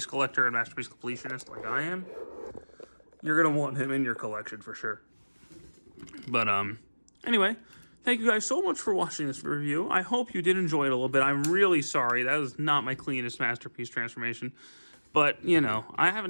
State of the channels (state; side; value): inverted; both; correlation -1.00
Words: collector and Masterpiece completionist like I am. You're going to want him in your collection for sure. But, anyway, thank you guys so much for watching this review. I hope you did enjoy it a little bit. I'm really sorry. That was not my cleanest Masterpiece transformation. But, you know, I